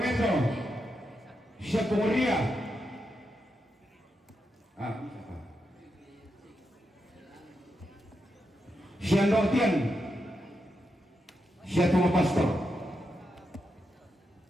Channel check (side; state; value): both; normal; correlation 0.85